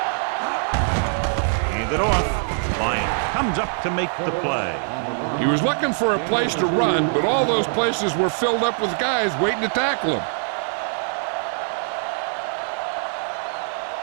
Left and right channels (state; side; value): silent; left; 64 dB below the other